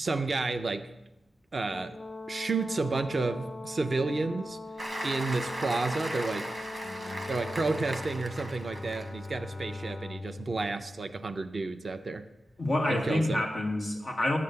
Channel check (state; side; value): normal; both; correlation 0.91